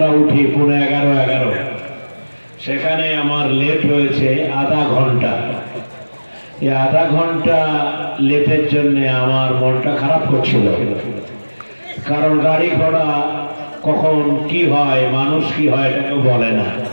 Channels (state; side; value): inverted; both; correlation -1.00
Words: উঠি, 11:15, সেখানে আমার লেট হয়েছে আধা ঘন্টা। এই আধা ঘন্টা লেটের জন্য আমার মনটা খারাপ করছিল, কারণ গাড়ি ঘোড়া কখন কি হয়, মানুষ কি হয় এটা কেউ বলে না।